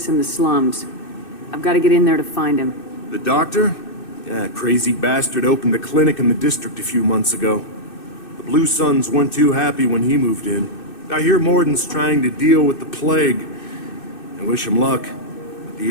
in the slums. I've got to get in there to find him. The doctor? Yeah, crazy bastard opened a clinic in the district a few months ago. The Blue Suns weren't too happy when he moved in. I hear Morden's trying to deal with the plague. I wish him luck, but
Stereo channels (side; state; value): right; late; 2.6 ms